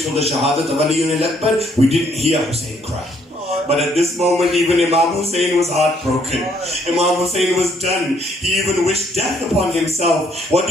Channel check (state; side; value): normal; both; correlation 0.68